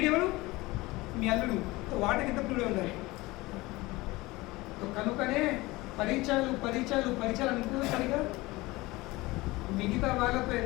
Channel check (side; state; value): right; quieter; 20.9 dB